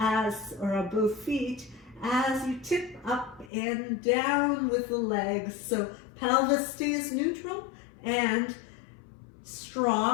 or both feet as you tip up and down with the legs. So pelvis stays neutral and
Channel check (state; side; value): drops out; right; at 3.5 s